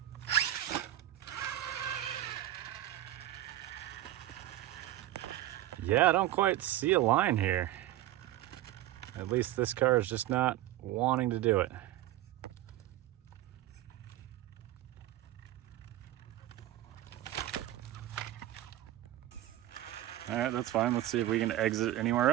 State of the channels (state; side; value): quieter; left; 14.0 dB